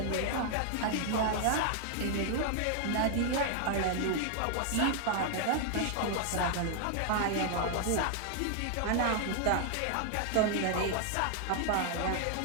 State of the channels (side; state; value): both; different; correlation 0.00